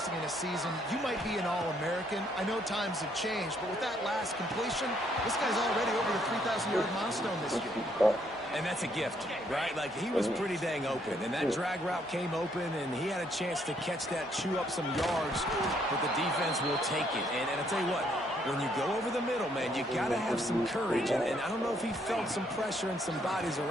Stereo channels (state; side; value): normal; both; correlation 0.70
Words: in a season, you might be an All-American. I know times have changed, but with that last completion, this guy's already over the 3,000-yard milestone this year. And that's a gift, right? Like, he was pretty dang open, and that drag route came open, and he had a chance to catch that, chew up some yards, but the defense will take it. And I'll tell you what, when you go over the middle, man, you got to have some courage. And I don't know if he felt some pressure and some bodies